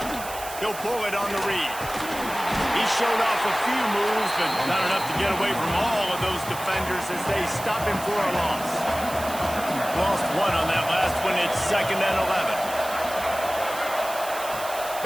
He'll pull it on the read. He showed off a few moves, but not enough to get away from all of those defenders as they stop him for a loss. Lost 1 on that last one. It's 2nd and 11.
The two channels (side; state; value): right; noise; hiss, 12 dB below the sound